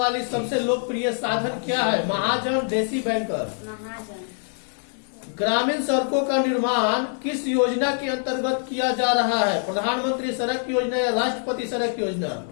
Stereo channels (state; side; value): silent; right; 62 dB below the other